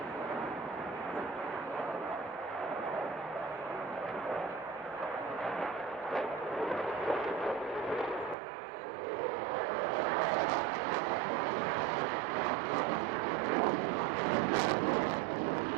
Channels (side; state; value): left; drops out; at 8.3 s